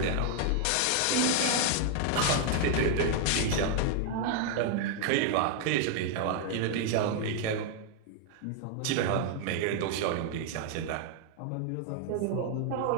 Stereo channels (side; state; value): both; different; correlation 0.00